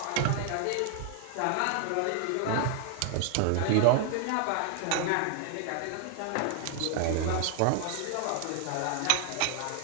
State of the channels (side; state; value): both; different; correlation 0.00